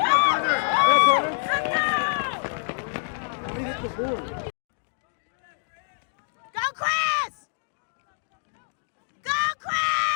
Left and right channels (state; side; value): silent; right; digital silence